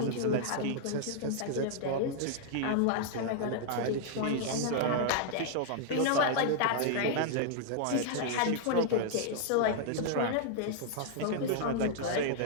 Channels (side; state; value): both; different; correlation -0.01